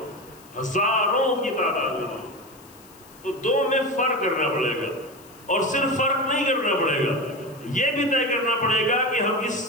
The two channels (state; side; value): noise; left; hiss, 24 dB below the sound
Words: ہزاروں کی تعداد میں. تو دو میں فرق کرنا پڑے گا. اور صرف فرق نہیں کرنا پڑے گا، یہ بھی طے کرنا پڑے گا کہ ہم اس